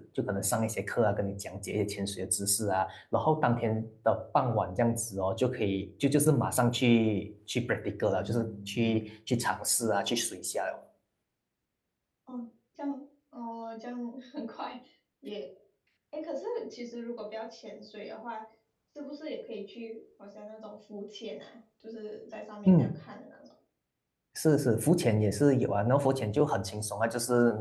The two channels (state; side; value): identical; both; correlation 1.00